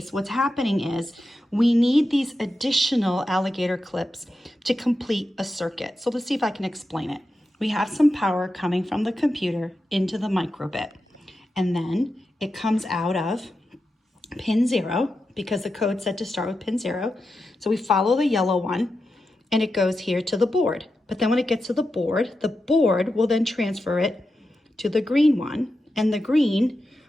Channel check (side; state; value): both; normal; correlation 0.89